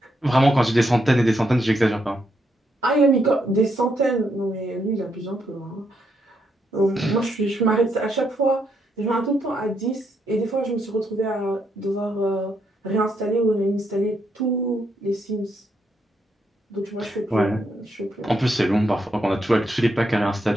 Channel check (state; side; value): normal; both; correlation 0.78